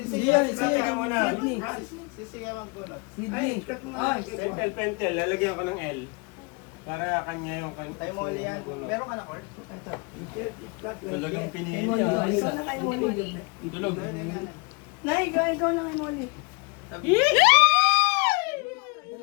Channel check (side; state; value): right; quieter; 30.3 dB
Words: Siya, Siya ka muna. Si Siya magbunot. Sydney. Pentel, lalagyan ko ng L. Para kanya yung kanya. Kay Molly yan. Meron ka na, Kurt? Talagang pinili Molly, niya. ikaw na kay Molly. Tulog. Nay, ikaw na kay Molly.